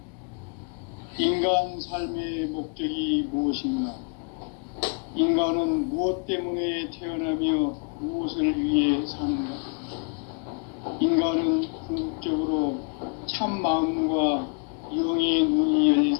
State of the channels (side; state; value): right; quieter; 38.4 dB